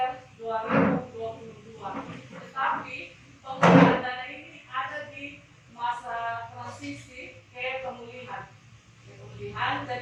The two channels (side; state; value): both; identical; correlation 1.00